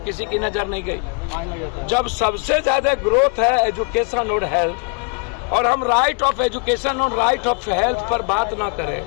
की नजर नहीं गई। जब सबसे ज्यादा ग्रोथ है एजुकेशन और हेल्थ, और हम राइट ऑफ एजुकेशन और राइट ऑफ हेल्थ पर बात ना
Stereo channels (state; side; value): quieter; right; 35.7 dB